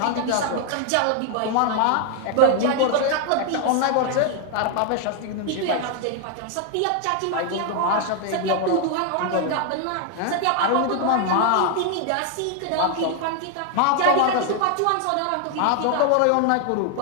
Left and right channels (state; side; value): different; both; correlation 0.00